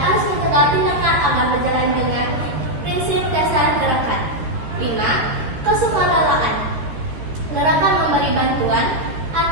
mencegah tindakan agar berjalan dengan prinsip dasar gerakan. 5. Kesukarelaan, gerakan memberi bantuan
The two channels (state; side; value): late; left; 13 ms